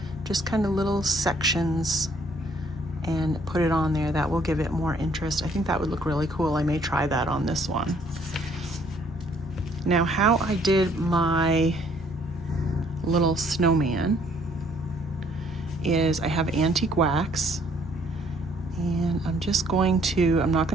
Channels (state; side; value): normal; both; correlation 0.63